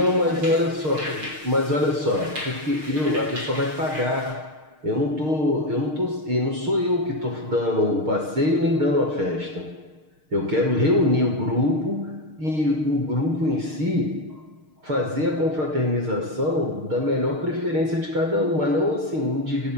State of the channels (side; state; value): left; late; 6.5 ms